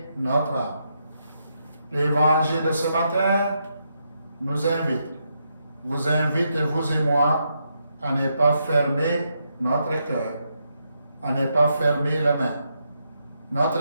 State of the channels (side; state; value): both; inverted; correlation -0.81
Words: notre âme. L'évangile de ce matin nous vous invite, vous et moi, à ne pas fermer notre cœur, à ne pas fermer les mains.